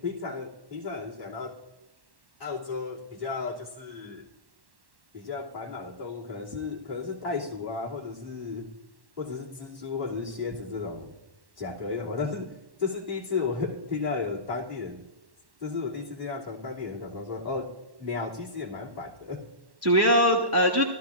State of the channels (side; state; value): left; late; 1.1 ms